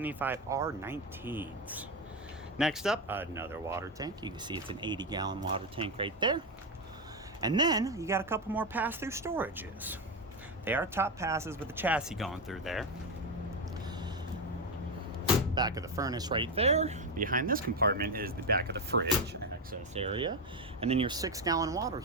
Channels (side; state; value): both; normal; correlation 0.11